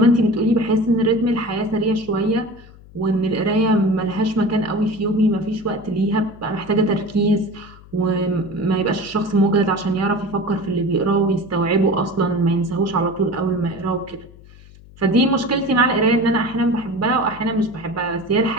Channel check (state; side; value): noise; left; hum, 22 dB below the sound